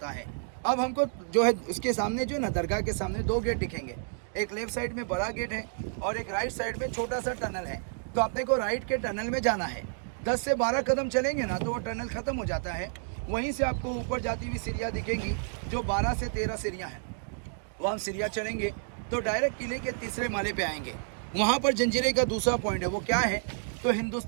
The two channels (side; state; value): left; silent; digital silence